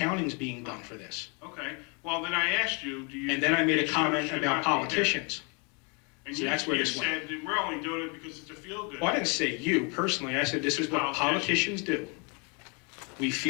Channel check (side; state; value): right; quieter; 33.6 dB